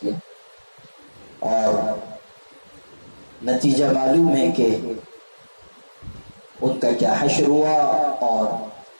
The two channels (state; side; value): inverted; both; correlation -1.00